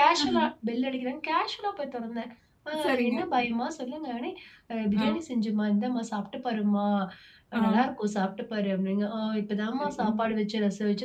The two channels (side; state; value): both; identical; correlation 1.00